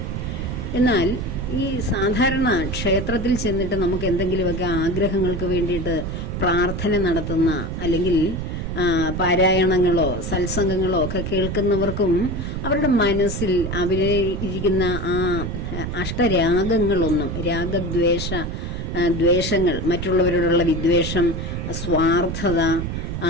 എന്നാൽ ഈ സാധാരണ ക്ഷേത്രത്തിൽ ചെന്നിട്ട് നമുക്ക് എന്തെങ്കിലുമൊക്കെ ആഗ്രഹങ്ങൾക്ക് വേണ്ടിയിട്ട് പ്രാർത്ഥന നടത്തുന്ന അല്ലെങ്കിൽ പാരായണങ്ങളോ സത്സംഗങ്ങളോ ഒക്കെ കേൾക്കുന്നവർക്കും അവരുടെ മനസ്സിൽ അവരെ ഇരിക്കുന്ന ആ അഷ്ടരാഗങ്ങളൊന്നും ദ്വേഷങ്ങൾ, മറ്റുള്ളവരോടുള്ള വിദ്വേഷം, സ്വാർത്ഥത,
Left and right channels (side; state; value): right; noise; rumble, 4 dB below the sound